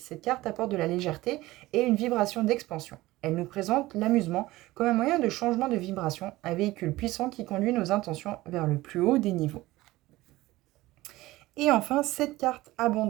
carte apporte de la légèreté et une vibration d'expansion. Elle nous présente l'amusement comme un moyen de changement de vibration, un véhicule puissant qui conduit nos intentions vers le plus haut des niveaux. Et enfin, cette carte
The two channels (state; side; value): quieter; left; 18.2 dB